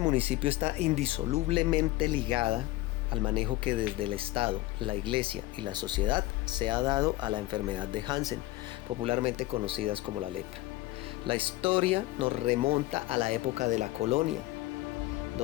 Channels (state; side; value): quieter; right; 17.9 dB